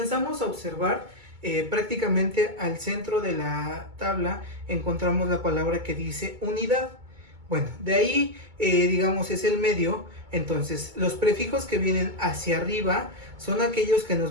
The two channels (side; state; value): left; late; 2.2 ms